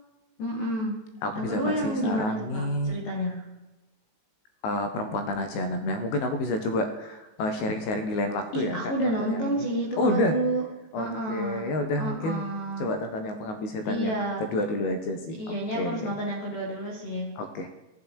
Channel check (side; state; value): right; late; 19 ms